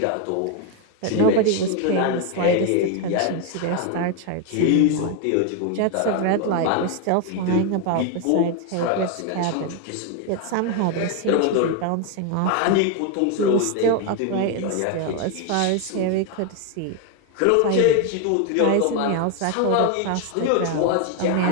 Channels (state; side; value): different; both; correlation 0.01